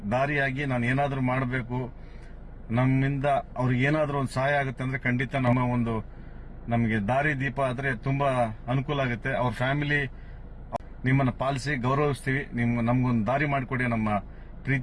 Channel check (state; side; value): identical; both; correlation 1.00